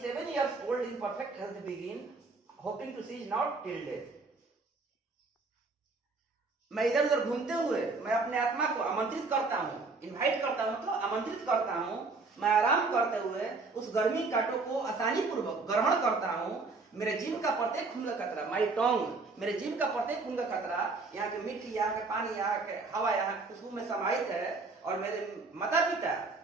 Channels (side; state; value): left; quieter; 3.9 dB